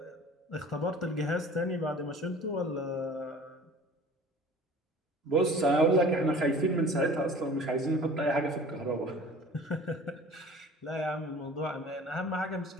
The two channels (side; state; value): both; normal; correlation 0.45